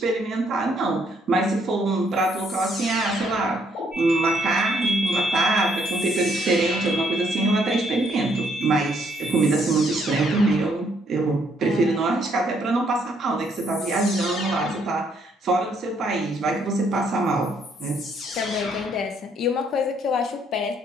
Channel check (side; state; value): both; normal; correlation 0.70